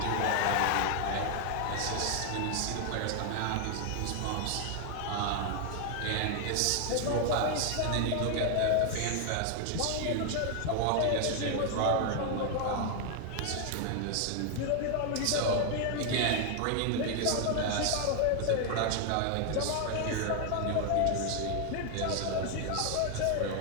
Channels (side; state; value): both; different; correlation 0.00